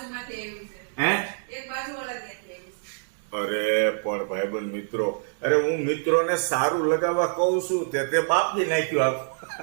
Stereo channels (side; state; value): left; silent; digital silence